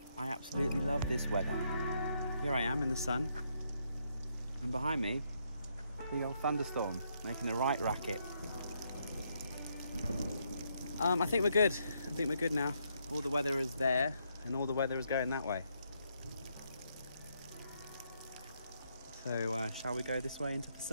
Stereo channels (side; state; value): both; inverted; correlation -0.76